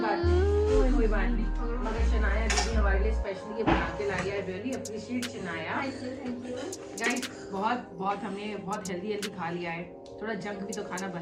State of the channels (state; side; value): identical; both; correlation 1.00